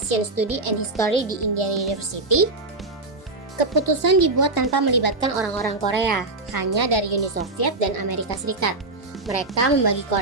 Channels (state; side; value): quieter; left; 3.1 dB